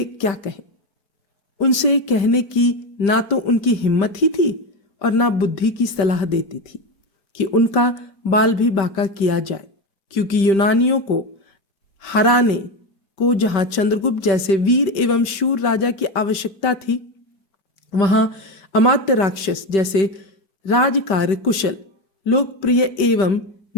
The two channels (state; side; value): late; right; 5.2 ms